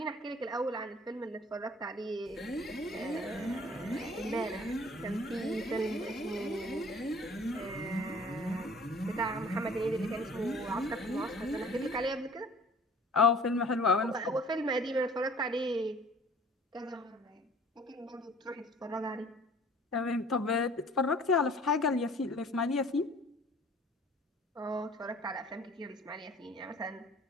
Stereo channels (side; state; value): both; normal; correlation 0.50